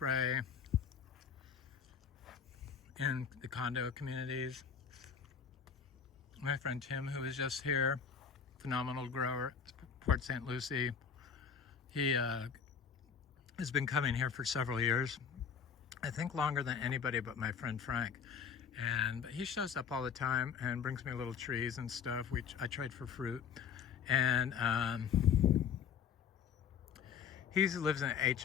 in the condo communities. My friend Tim, who was just here, phenomenal grower, Port St. Lucie, he has been coming here for several years. I think longer than anybody but my friend Frank. But he shows up all the time and brings me little trees and stuff, which I trade for fruit. And he lives in an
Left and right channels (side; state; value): right; quieter; 7.0 dB